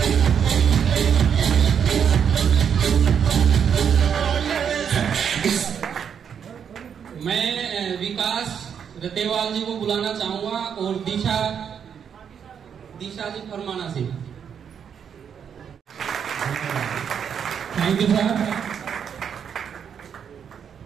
मैं विकास रतेवाल जी को बुलाना चाहूंगा और दिशा जी फरमाना से। Thank you sir.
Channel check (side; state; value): left; quieter; 7.7 dB